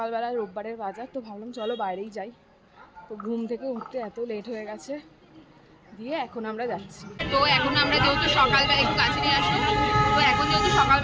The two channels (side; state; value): both; identical; correlation 1.00